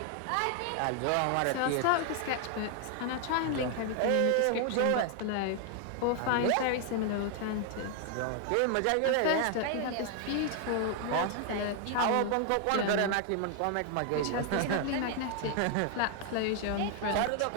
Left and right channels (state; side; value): different; both; correlation 0.00